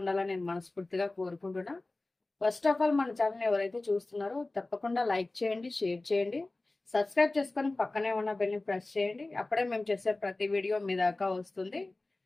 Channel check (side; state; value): right; quieter; 3.0 dB